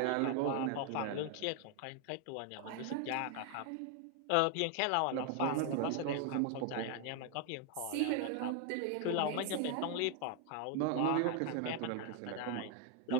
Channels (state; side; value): different; both; correlation 0.01